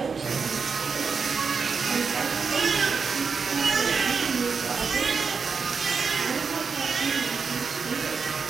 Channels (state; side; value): quieter; left; 5.3 dB